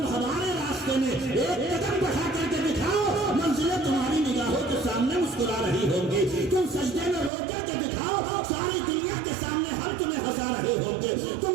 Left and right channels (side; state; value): left; drops out; at 7.3 s